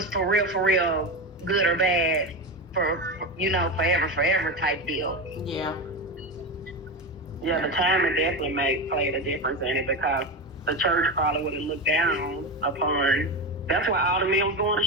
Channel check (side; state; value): both; normal; correlation 0.18